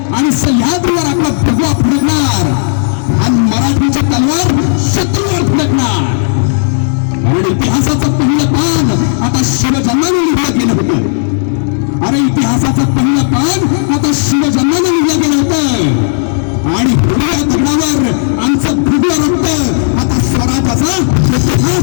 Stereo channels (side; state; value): right; silent; digital silence